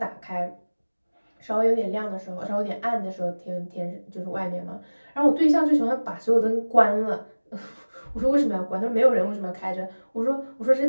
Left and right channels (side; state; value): both; inverted; correlation -1.00